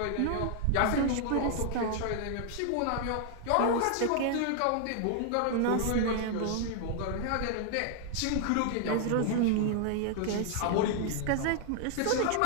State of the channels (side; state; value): both; different; correlation 0.00